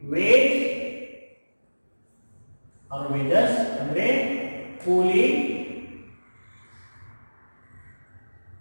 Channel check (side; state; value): both; inverted; correlation -1.00